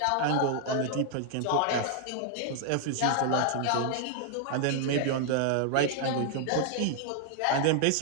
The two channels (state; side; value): different; both; correlation 0.00